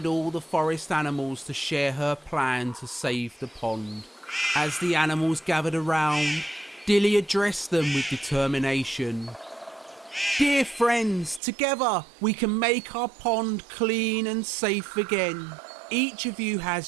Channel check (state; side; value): drops out; left; at 11.4 s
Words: all the forest animals to share her plan to save the pond. As the animals gathered around, Dilly addressed them with determination. "Dear friends, together we can make our pond clean and safe again. Each of you